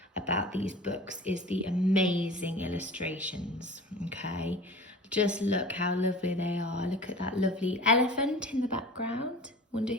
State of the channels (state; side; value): normal; both; correlation 0.38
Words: about these books is the amazing illustrations. Okay. Just look how lovely they are. Look at that lovely elephant in the background. Wonder